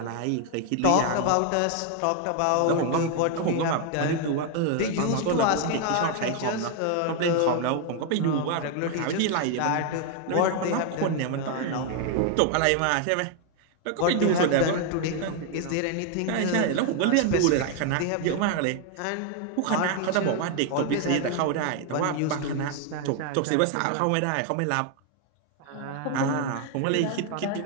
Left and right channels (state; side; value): different; both; correlation 0.00